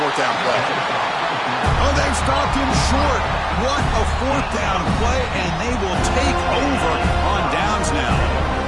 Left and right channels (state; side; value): identical; both; correlation 1.00